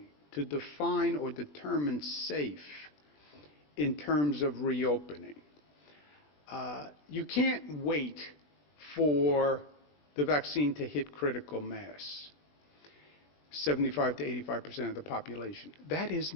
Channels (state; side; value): late; right; 20 ms